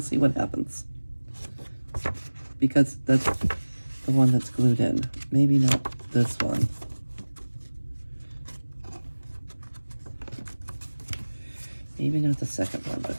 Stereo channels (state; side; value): inverted; both; correlation -1.00